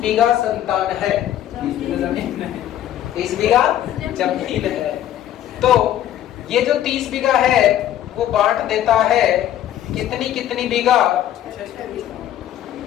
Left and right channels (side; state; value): right; quieter; 11.8 dB